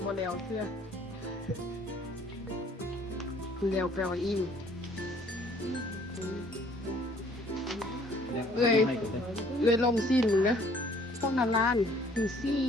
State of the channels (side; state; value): both; normal; correlation 0.59